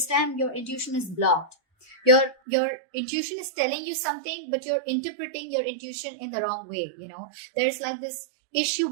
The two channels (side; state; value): left; drops out; at 2.4 s